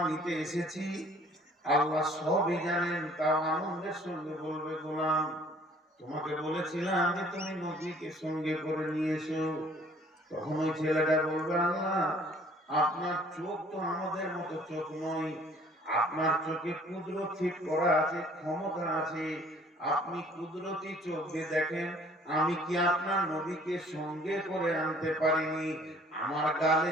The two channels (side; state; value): both; normal; correlation 0.56